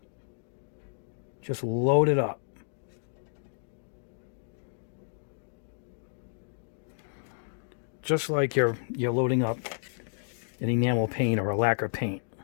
Just load it up. Just like you're loading up an enamel paint or a lacquer paint.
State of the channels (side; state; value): right; silent; digital silence